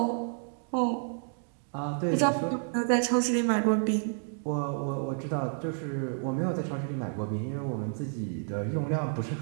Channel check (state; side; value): silent; left; 58 dB below the other